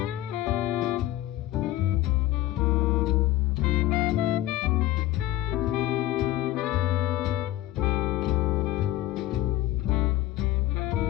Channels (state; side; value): quieter; right; 15.2 dB